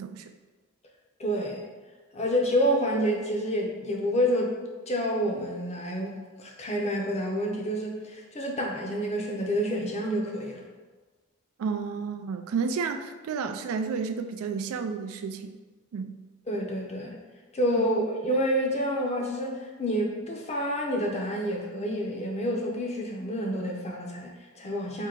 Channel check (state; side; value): normal; both; correlation 0.28